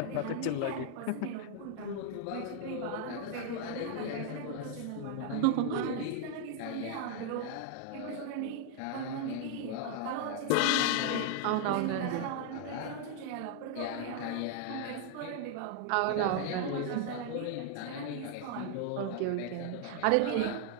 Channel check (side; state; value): both; different; correlation 0.00